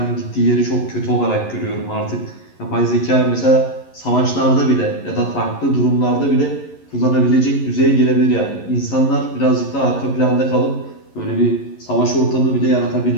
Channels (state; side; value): late; right; 11 ms